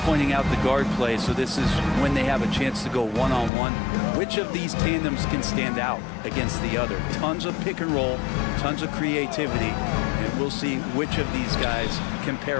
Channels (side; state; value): right; drops out; at 3.5 s